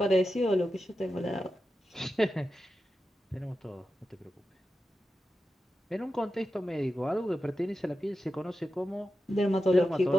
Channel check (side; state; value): both; normal; correlation 0.90